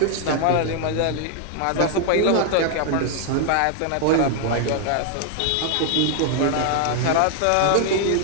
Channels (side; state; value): both; different; correlation 0.00